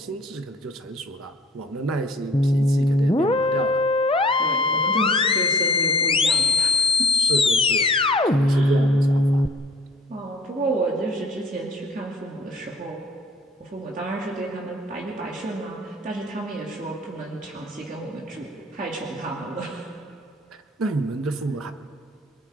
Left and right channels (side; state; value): both; normal; correlation 0.55